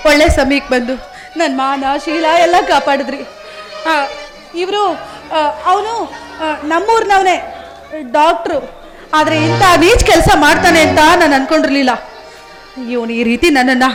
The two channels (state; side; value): identical; both; correlation 1.00